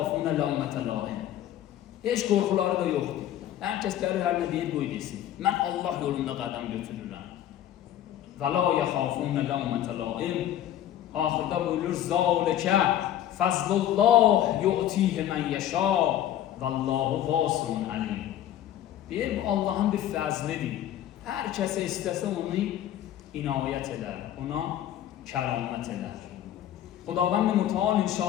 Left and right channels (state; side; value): quieter; right; 11.7 dB